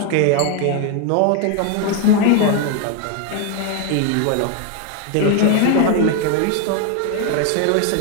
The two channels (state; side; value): different; both; correlation 0.01